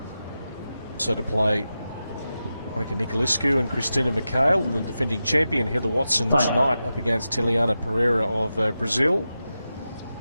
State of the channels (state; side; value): inverted; both; correlation -0.91